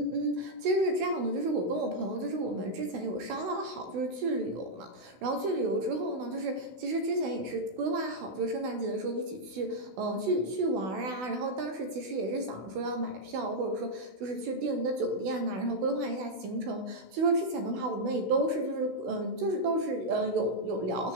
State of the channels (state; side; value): late; left; 16 ms